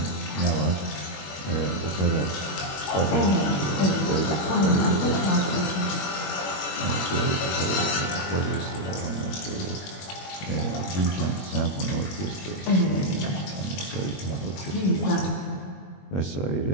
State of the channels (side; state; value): right; late; 21 ms